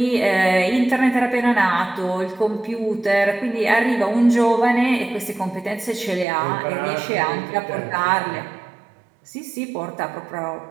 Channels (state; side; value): drops out; left; at 6.2 s